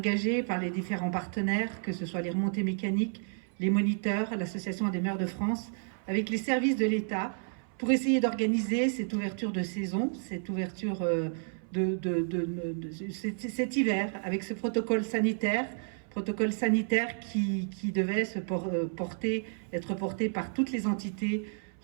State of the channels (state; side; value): silent; left; 57 dB below the other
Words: par les différents partenaires, que ce soit les remontées mécaniques, les moniteurs, l'Association des maires de France, avec les services de l'État, pour essayer d'organiser cette ouverture de saison, cette ouverture cet hiver, avec ce protocole sanitaire qui devait être porté par toutes les entités